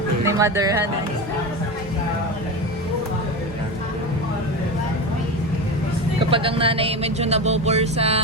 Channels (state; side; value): normal; both; correlation 0.23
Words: Ni Mother Han. Kapag ang nanay medyo nabobor sa